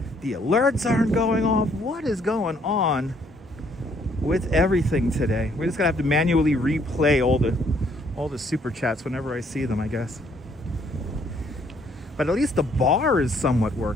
the alerts aren't going off. What is going on with everything today? We're just gonna have to manually replay all the super chats whenever I see them, I guess. But at least the bar is somewhat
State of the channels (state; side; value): normal; both; correlation 0.66